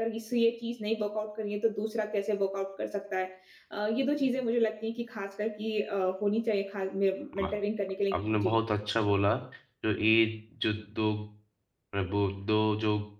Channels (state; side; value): identical; both; correlation 1.00